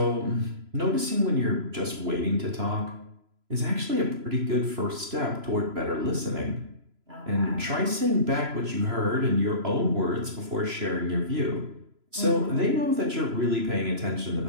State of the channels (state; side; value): late; left; 3.0 ms